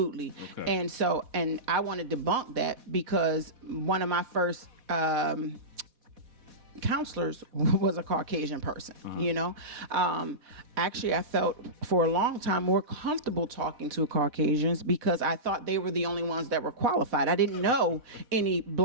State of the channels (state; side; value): late; left; 4.1 ms